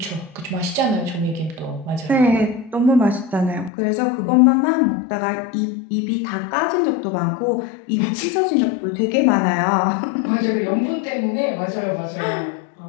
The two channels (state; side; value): drops out; right; at 3.7 s